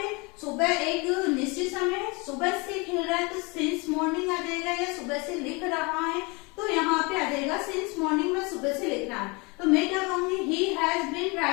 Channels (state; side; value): quieter; right; 28.0 dB